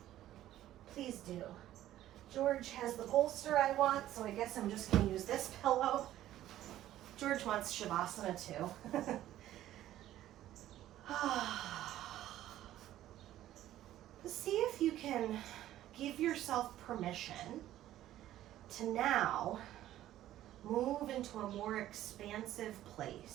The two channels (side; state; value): left; quieter; 13.3 dB